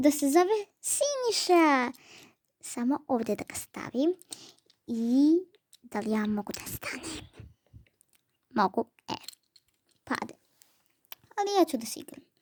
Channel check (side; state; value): both; identical; correlation 1.00